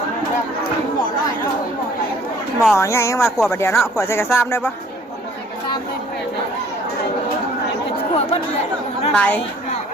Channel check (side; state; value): both; normal; correlation 0.56